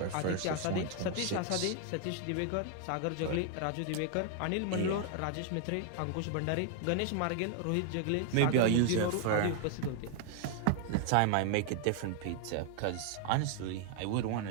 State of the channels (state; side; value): different; both; correlation 0.00